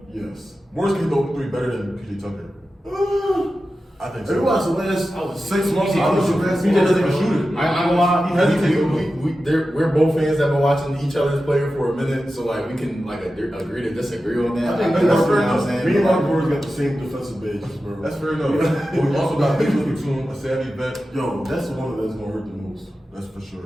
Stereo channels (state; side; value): normal; both; correlation 0.93